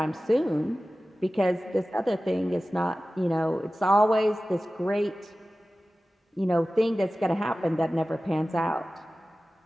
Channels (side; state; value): both; normal; correlation 0.96